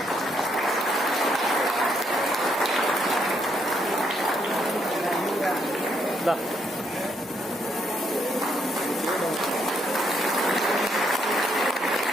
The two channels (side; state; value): both; normal; correlation 0.74